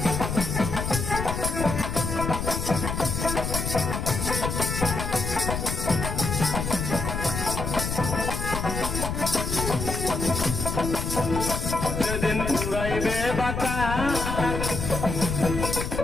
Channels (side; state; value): left; noise; rumble, 3 dB below the sound